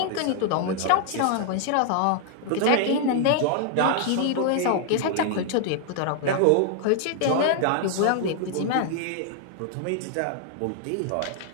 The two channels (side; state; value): both; different; correlation 0.00